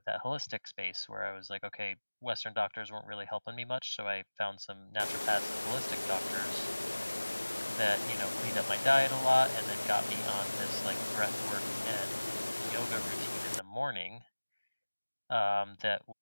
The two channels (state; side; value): inverted; both; correlation -1.00